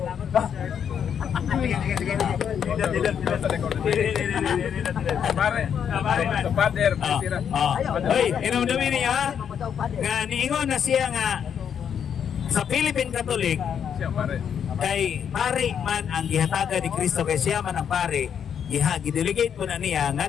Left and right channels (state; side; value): quieter; right; 8.1 dB